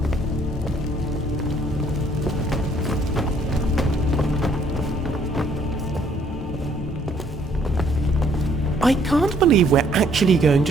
I can't believe we're actually going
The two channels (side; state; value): both; normal; correlation 0.64